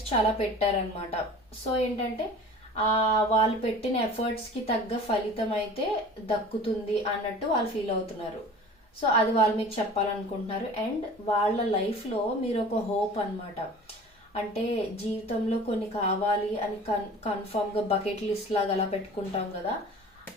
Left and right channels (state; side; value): normal; both; correlation 0.42